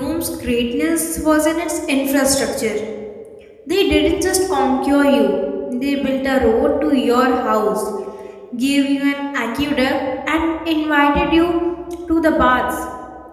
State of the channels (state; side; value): identical; both; correlation 1.00